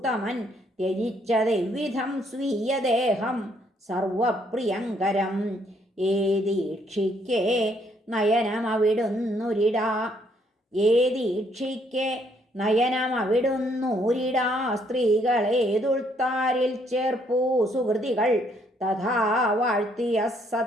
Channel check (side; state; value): both; normal; correlation 0.69